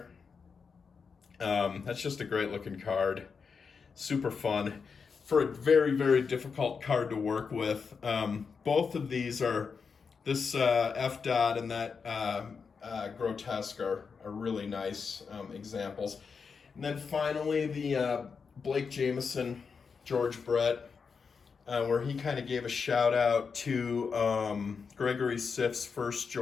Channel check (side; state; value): right; quieter; 5.6 dB